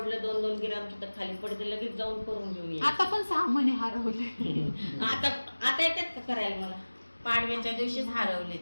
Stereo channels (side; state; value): both; inverted; correlation -1.00